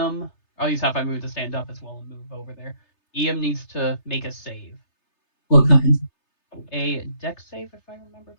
I'll use half my move to stand up as well and move over there. Iam needs to make a save. What kind? A dex save, if I remember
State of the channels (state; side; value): late; right; 3.3 ms